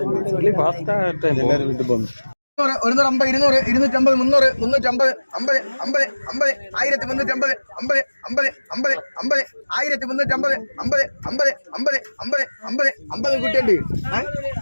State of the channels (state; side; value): inverted; both; correlation -1.00